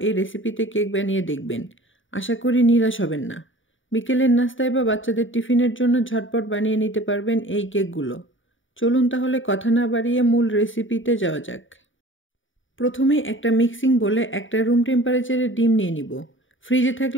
এই রেসিপিতে কেক বানিয়ে দেখবেন। আশা করি নিরাশ হবেন না। বিকেলের নাস্তায় বা বাচ্চাদের টিফিনের জন্য ঝটপট বানিয়ে নিতে পারবেন এই কেকগুলো। চলুন তাহলে কথা না বাড়িয়ে মূল রেসিপিতে যাওয়া যাক। প্রথমে একটা মিক্সিং বলে একটা রুম টেম্পারেচারে ডিম নিয়ে নিব। ফ্রিজে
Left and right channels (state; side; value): late; right; 0.57 ms